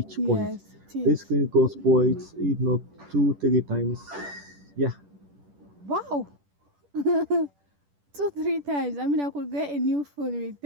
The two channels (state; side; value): late; left; 10 ms